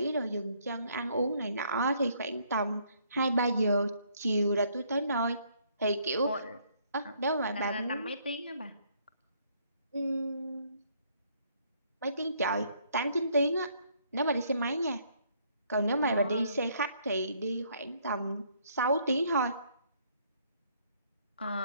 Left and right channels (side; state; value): both; inverted; correlation -0.67